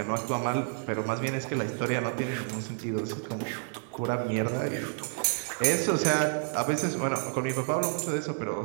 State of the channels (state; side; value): silent; left; digital silence